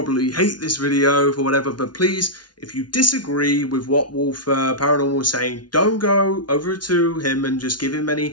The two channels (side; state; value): right; late; 0.70 ms